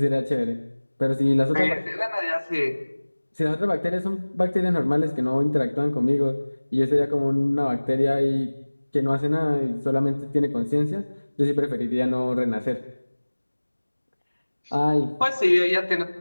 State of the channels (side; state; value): both; inverted; correlation -1.00